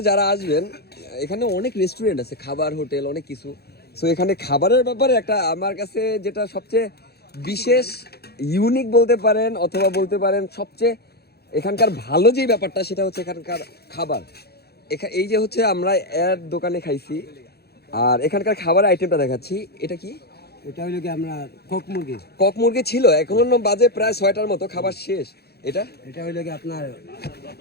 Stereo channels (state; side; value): late; right; 0.46 ms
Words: যারা আসবেন, এখানে অনেক রেস্টুরেন্ট আছে, খাবার হোটেল অনেক কিছু। সো এখানে খাবারের ব্যাপারে একটা আমার কাছে যেটা সবচেয়ে বিশেষ ইউনিক বলতে পারেন, অথবা বলতে পারেন সবচেয়ে এখানকার ভালো যেই ব্যাপারটা, সেটা হচ্ছে এখানকার খাবার। এই যে হচ্ছে আমরা এর দোকানে খাইছি, আর এখানকার খাবার আইটেমটা দেখাচ্ছি। এটা কি? এটা হইলো কি আমরা কক মুরগি। কক মুরগি ছিল, এখন বাজে প্রায় 6টার মতো, খাবার শেষ। এটা এটা হইলো কি আপনার